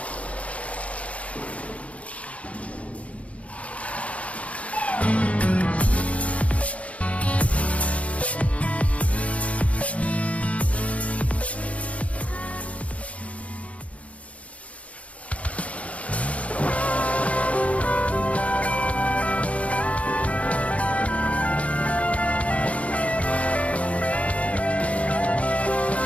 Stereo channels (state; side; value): late; right; 0.065 ms